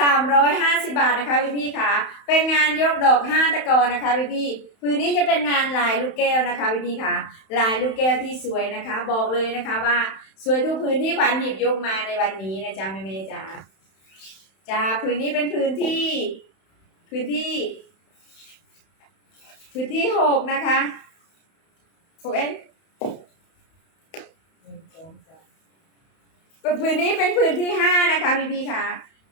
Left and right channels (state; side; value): late; right; 31 ms